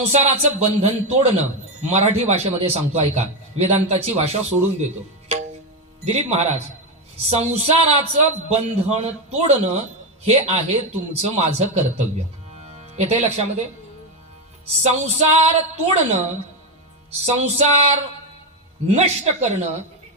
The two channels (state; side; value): normal; both; correlation 0.10